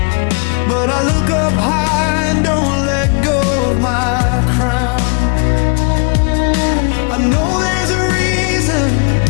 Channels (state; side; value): quieter; right; 37.7 dB